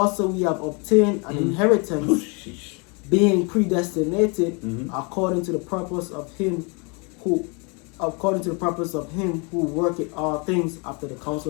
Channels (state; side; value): quieter; right; 32.2 dB